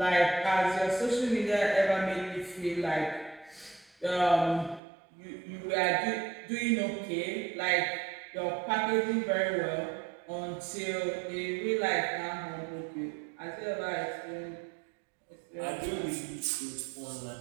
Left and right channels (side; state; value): left; drops out; at 4.8 s